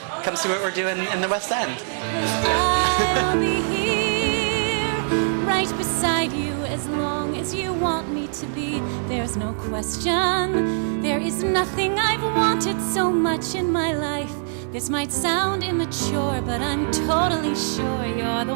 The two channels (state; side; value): silent; left; digital silence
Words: come see what we're doing in the West End. I'll be here, right beside you, as long as you want me to be. There's no question. There is nothing I've wanted so much in my life. This might sound immature, but I'm totally sure you're the